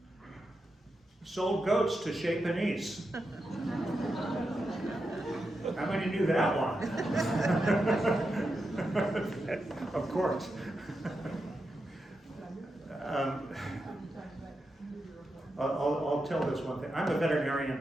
Sold goats to Chez Panisse. How many knew that one? Of course. I'll tell this one thing. I'm a veterinarian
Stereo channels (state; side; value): normal; both; correlation 0.87